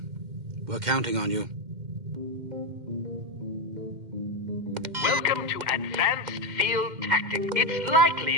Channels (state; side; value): late; left; 2.1 ms